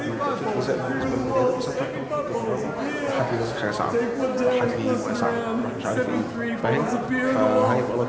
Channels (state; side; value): identical; both; correlation 1.00